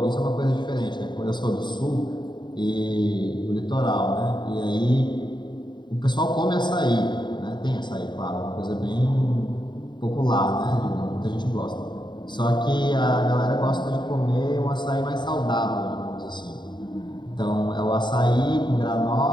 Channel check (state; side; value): late; right; 0.22 ms